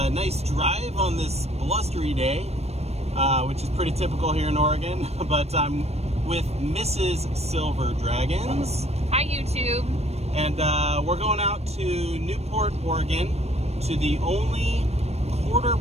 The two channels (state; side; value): late; left; 0.31 ms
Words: nice drive on this blustery day, which is pretty typical here in Oregon, but I'm with Mrs. Silver Dragons. Hi YouTube. And we're going out to Newport, Oregon, to the only quarter